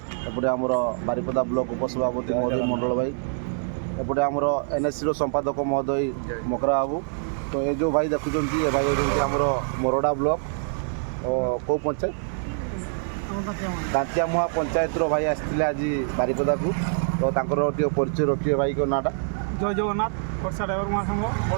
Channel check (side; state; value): left; silent; 62 dB below the other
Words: एपटे आमर बारिपदा ब्लॉक उपसभापति महोदय मंडल भाई एपटे आमर एनएससी संपादक महोदय मकरा बाबू। तो ये जो भाई देखुं ये भाई आमर मोरडा ब्लॉक कौ पंचायत दांतियामुहा पंचायत भाई आसते आज बारिपदा को। तो परिचय रखिए भाई को नाटा। जय जगन्नाथ ओडिशा ड्राइवर महासंघ